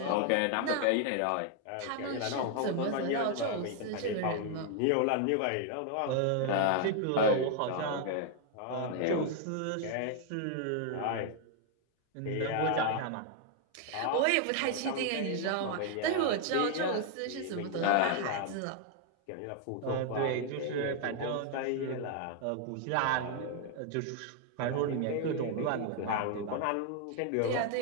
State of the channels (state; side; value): different; both; correlation 0.00